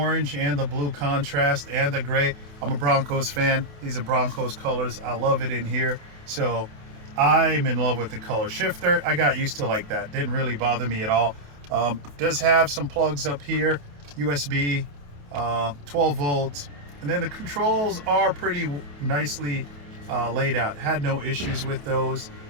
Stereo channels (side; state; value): left; late; 28 ms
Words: and the blue contrast and the gray. I'm a Broncos fan. These are Broncos colors. I love it in here. So I'm in love with the color shifter. I got used to like that. Didn't really bother me at all. Does have some plugs up here, USB, 12 volts. And then the controls are pretty nicely laid out. Had no issues with those.